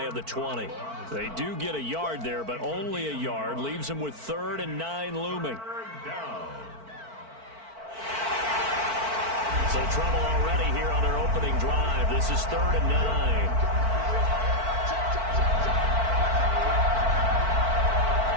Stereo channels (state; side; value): late; left; 4.5 ms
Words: of the 20. They do get a yard there, but only a yard. Leaves them with 3rd and 9 looming. So trouble already here on their opening drive. This is 3rd and 9.